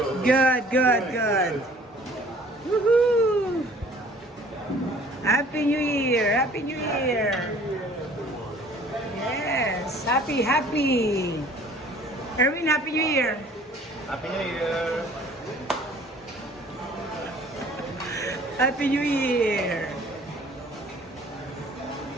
Good. Woohoo! Happy New Year. Happy New Year. Yes. Happy. Erwin, Happy New Year. Happy New Year. Happy New Year.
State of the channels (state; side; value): normal; both; correlation 0.52